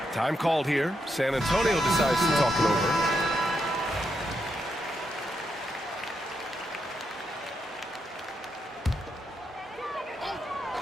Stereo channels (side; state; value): both; normal; correlation 0.82